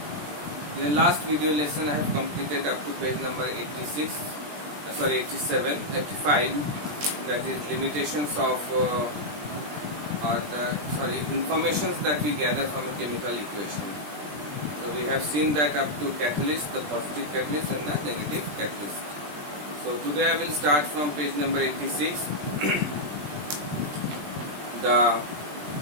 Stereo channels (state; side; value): late; left; 20 ms